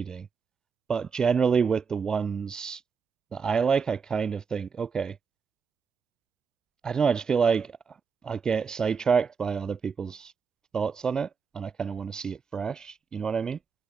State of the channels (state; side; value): quieter; left; 5.8 dB